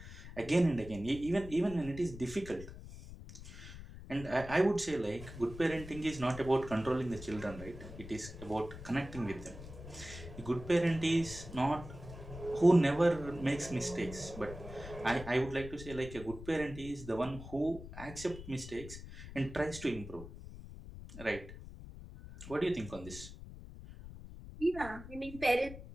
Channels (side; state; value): left; noise; rumble, 13 dB below the sound